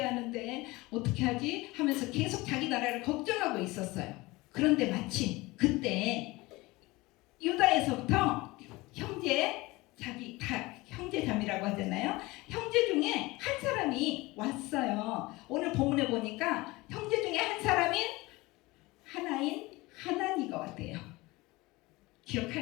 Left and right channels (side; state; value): right; quieter; 21.6 dB